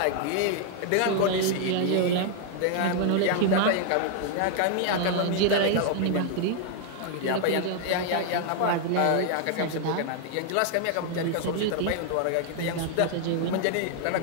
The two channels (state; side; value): different; both; correlation 0.00